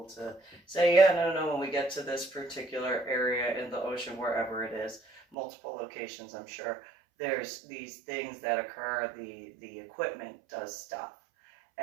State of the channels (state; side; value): drops out; left; at 5.4 s